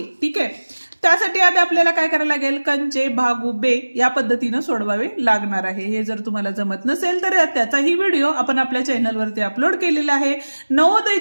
ठीक आहे, त्यासाठी आता आपल्याला काय करायला लागेल, कंचे भागू बे या पद्धतीने सोडवावे लागणार आहे। हे जर तुम्हाला जमत नसेल तर त्याचाही व्हिडिओ आपण आपल्या चॅनलवरती अपलोड केलेला आहे।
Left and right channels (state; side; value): inverted; both; correlation -1.00